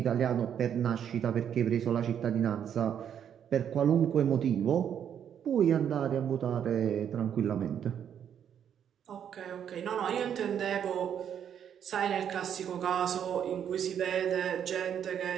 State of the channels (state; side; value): quieter; left; 8.8 dB